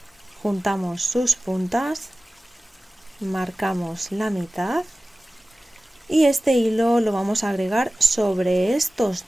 juntamos sus puntas, marcamos la mitad y este hilo lo vamos a agregar sobre estos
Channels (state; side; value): normal; both; correlation 0.96